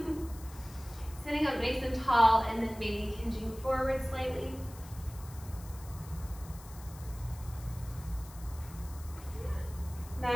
Sitting up nice and tall and then maybe hinging forward slightly.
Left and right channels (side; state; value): left; noise; hiss, 19 dB below the sound